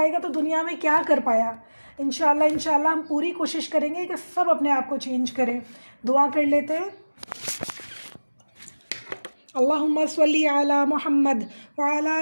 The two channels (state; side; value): inverted; both; correlation -1.00